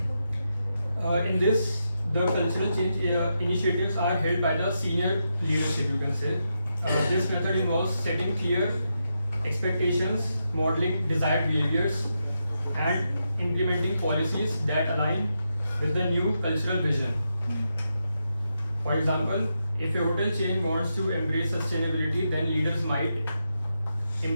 in this the cultural change initiatives are held by the senior leadership, you can say, This method involves setting clear expectations, modeling desired behaviors, and implementing policies that align with the new cultural vision. For example, if a hotel chain wants to embrace sustainability, then leaders might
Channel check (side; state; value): both; inverted; correlation -0.85